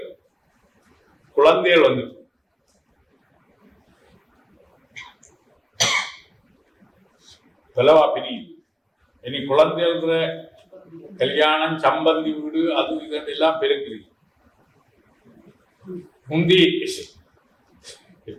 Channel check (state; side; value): identical; both; correlation 1.00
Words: குழந்தைகள் வந்து பிரி இனி குழந்தைகள் கல்யாணம், சம்பந்தி வீடு, அது இதெல்லாம் பெருக்குறீங்க. முந்தி